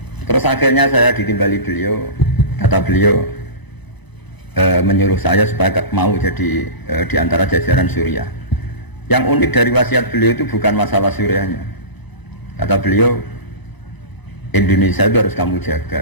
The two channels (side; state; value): right; late; 1.0 ms